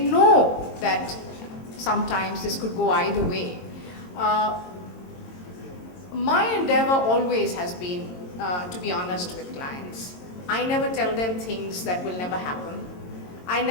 that sometimes this could go either way. My endeavor always has been to be honest with clients. I never tell them things that will never happen. I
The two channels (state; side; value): late; right; 22 ms